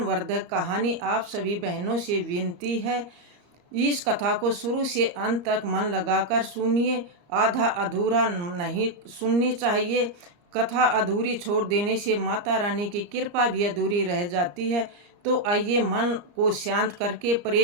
कहानी। आप सभी बहनों से विनती है, इस कथा को शुरू से अंत तक मन लगाकर सुनिए। आधा अधूरा नहीं सुननी चाहिए। कथा अधूरी छोड़ देने से माता रानी की कृपा भी अधूरी रह जाती है। तो आइए मन को शांत करके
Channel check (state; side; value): late; left; 34 ms